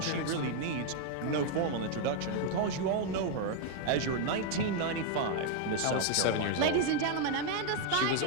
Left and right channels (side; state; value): both; different; correlation 0.00